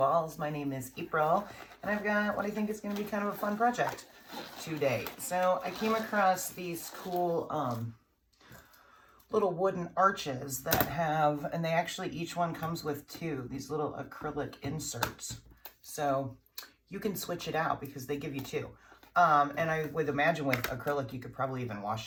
My name is April, and I've got what I think is going to be kind of a fun project today. So I came across these cool little wooden arches that have, and they actually, each one comes with these little acrylic inserts. So you can switch it out because they give you two. And I would imagine with acrylic, you could probably even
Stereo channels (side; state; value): both; identical; correlation 1.00